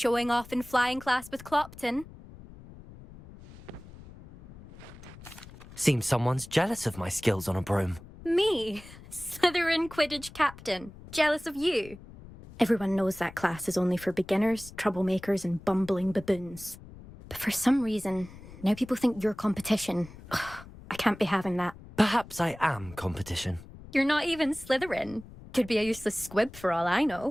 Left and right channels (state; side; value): noise; left; rumble, 18 dB below the sound